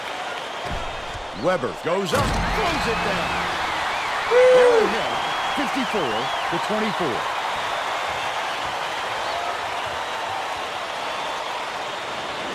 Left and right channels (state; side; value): identical; both; correlation 1.00